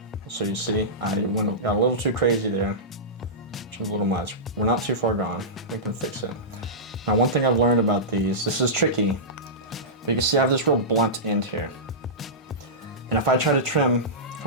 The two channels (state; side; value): normal; both; correlation -0.16